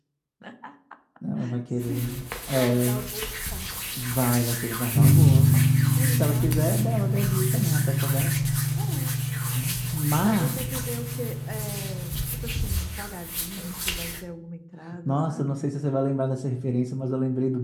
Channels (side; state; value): both; identical; correlation 1.00